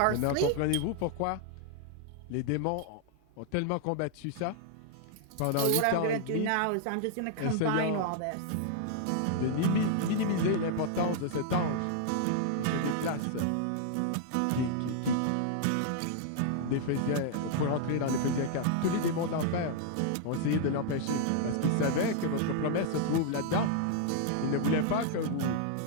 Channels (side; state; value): both; different; correlation -0.01